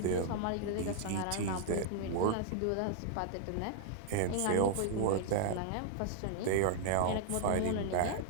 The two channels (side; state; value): both; different; correlation -0.01